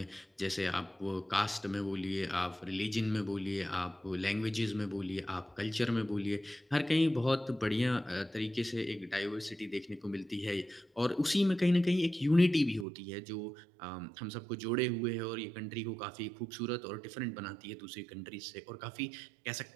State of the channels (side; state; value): left; drops out; at 12.9 s